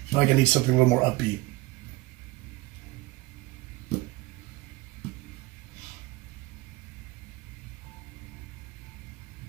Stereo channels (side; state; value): left; quieter; 20.3 dB